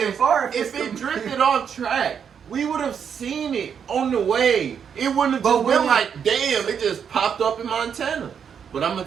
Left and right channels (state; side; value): quieter; left; 7.5 dB